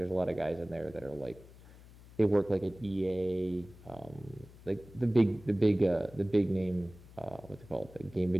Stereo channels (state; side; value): noise; left; hum, 20 dB below the sound